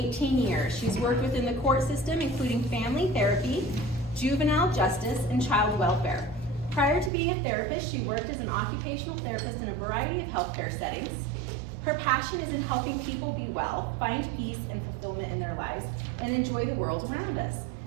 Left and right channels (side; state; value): left; drops out; at 7.1 s